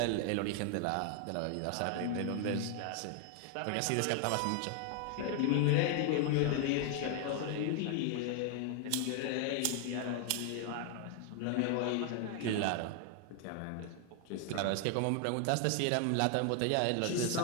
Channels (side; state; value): both; different; correlation 0.00